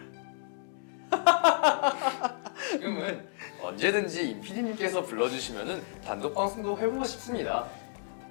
지금은 언제든지 임PD님께서 불러주시면은 단독 방송도 해보고 싶습니다.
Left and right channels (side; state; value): right; silent; digital silence